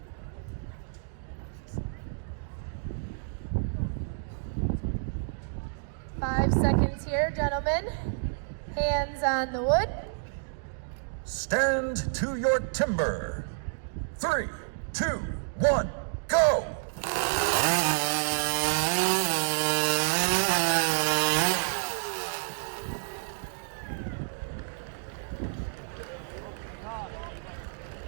5 seconds here, gentlemen. Hands on the wood. Stand to your timber. 3, 2, 1, go!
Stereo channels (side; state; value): left; silent; digital silence